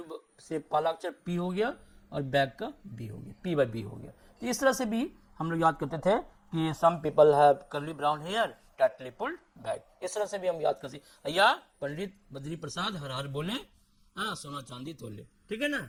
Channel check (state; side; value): identical; both; correlation 1.00